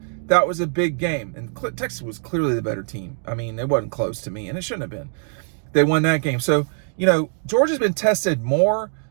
that was a big game. And Texas was clearly the better team. I mean, it wasn't close to me, and it shouldn't have been. They won that game. So, Georgia's been tested more.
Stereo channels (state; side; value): silent; left; 56 dB below the other